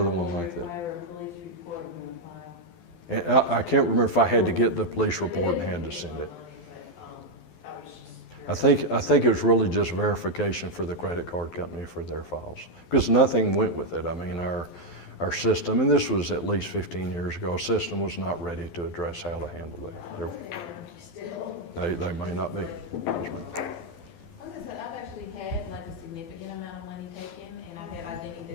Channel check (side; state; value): right; late; 12 ms